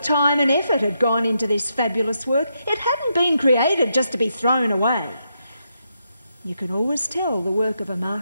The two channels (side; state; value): both; inverted; correlation -0.81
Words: time and effort had gone into this fabulous work. It hadn't been created just to be thrown away. You could always tell the work of a